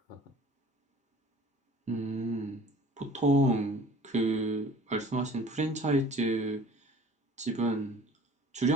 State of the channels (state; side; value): normal; both; correlation 0.48